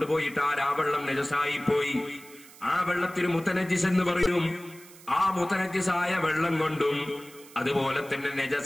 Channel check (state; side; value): noise; right; hiss, 21 dB below the sound